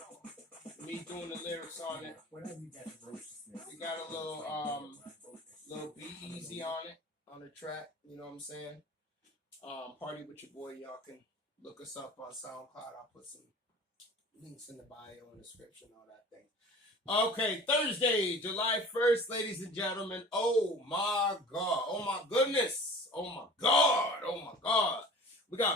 Me doing the lyrics on it. We got a little Be Easy on it, on the track. You know what I'm saying? Party With Your Boy. Y'all can look us up on SoundCloud. I'll put some links in the bio and description, all that thing. Okay, Thursday, July 1st, ladies and gentlemen. Oh my God. Oh my goodness. Oh my God. Oh my God. We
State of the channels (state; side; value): normal; both; correlation 0.43